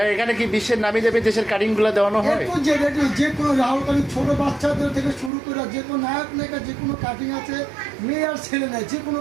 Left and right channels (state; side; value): drops out; left; at 5.3 s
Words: এখানে কি বিশ্বের নামি দেবে দেশের কাটিংগুলো দেওয়ানো হয়? এরপর যে কোনো রাহুল কাটিং, ছোট বাচ্চাদের থেকে শুরু করে যে কোনো নায়ক নায়িকা যে কোনো কাটিং আছে, মেয়ে আর ছেলে নেয়, যে কোনো